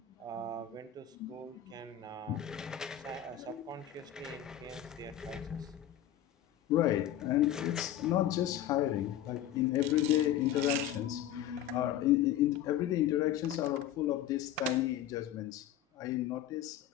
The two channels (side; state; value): right; quieter; 10.9 dB